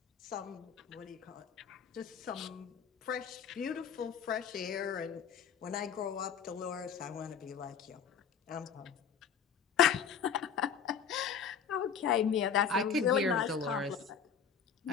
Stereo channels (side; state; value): right; quieter; 7.1 dB